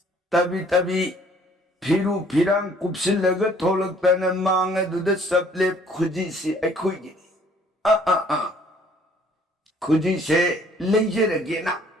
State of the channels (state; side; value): normal; both; correlation 0.59